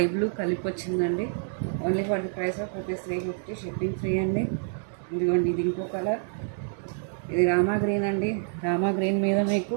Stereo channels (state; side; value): silent; left; digital silence